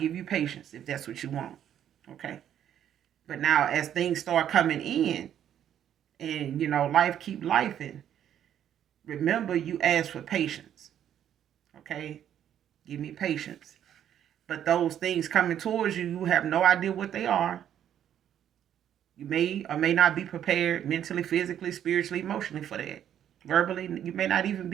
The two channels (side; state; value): left; quieter; 10.2 dB